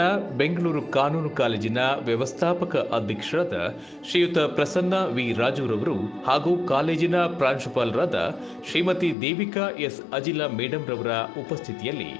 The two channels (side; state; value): right; drops out; at 9.2 s